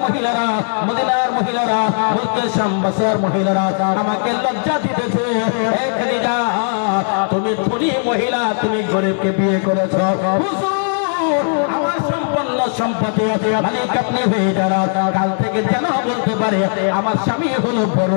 মহিলারা, মদিনার মহিলারা, মুলকে শাম বসরার মহিলারা আমাকে লজ্জা দিতেছে। হে খাদিজা তুমি ধনী মহিলা, তুমি গরিবকে বিয়ে করেছো। হুজুর আমার সম্পন্ন সম্পত্তি মালিক আপনি হয়ে যারা কাল থেকে যেন বলতে পারে আমার স্বামী হলো বড়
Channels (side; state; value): right; silent; 56 dB below the other